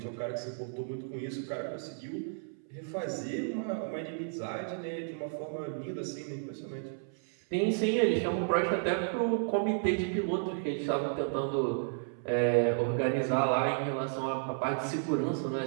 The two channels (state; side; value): silent; left; 56 dB below the other